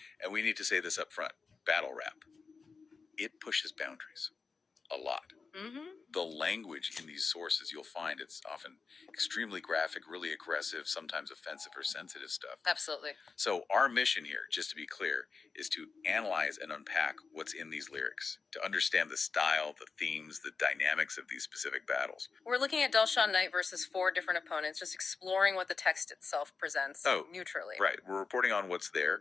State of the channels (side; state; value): right; quieter; 4.8 dB